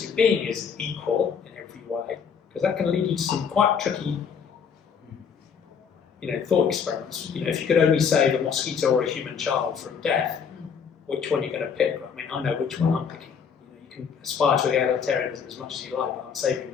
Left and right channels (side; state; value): right; quieter; 6.7 dB